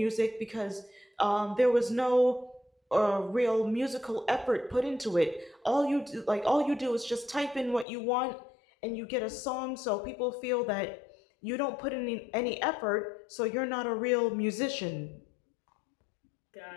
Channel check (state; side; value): drops out; right; at 7.9 s